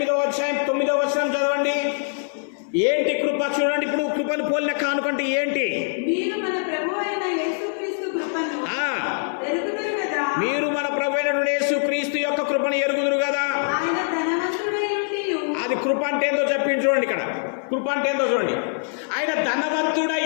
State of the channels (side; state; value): right; silent; 56 dB below the other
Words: చదవండి. ఏంటి కృప? చూడండి, ఇప్పుడు కృపను పోలిన కానుక అంటే ఏంటి? మీరు మన ప్రభువైన యేసుక్రీస్తు యొక్క కృపను ఎరుగుదురు కదా. అది కృప అంటే ఏందో చెప్పింది చూడండి. ఇక్కడ కృప అంటే ఏందో చూడండి. ఆయన ధనవంతుడై